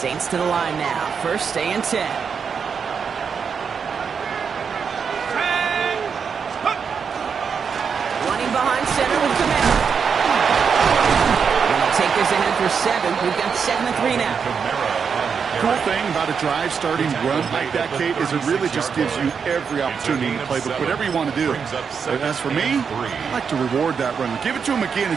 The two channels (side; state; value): left; quieter; 6.3 dB